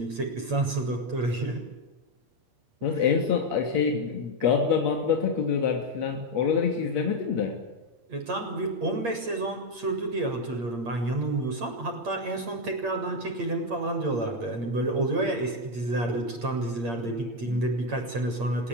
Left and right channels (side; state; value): left; late; 8.6 ms